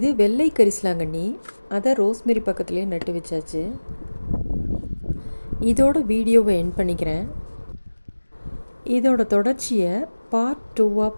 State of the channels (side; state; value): both; inverted; correlation -1.00